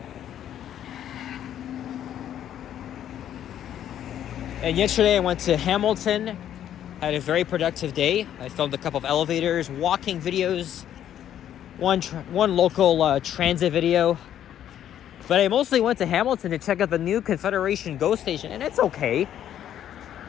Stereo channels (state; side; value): quieter; right; 10.7 dB